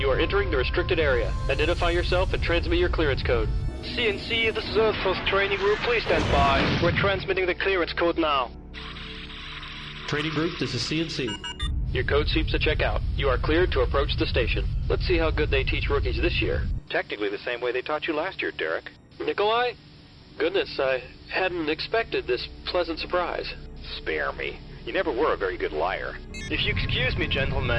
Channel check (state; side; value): identical; both; correlation 1.00